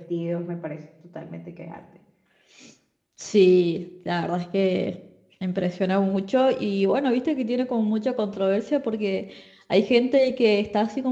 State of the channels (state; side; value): identical; both; correlation 1.00